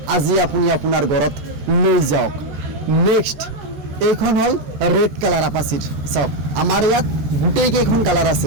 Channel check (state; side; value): late; left; 14 ms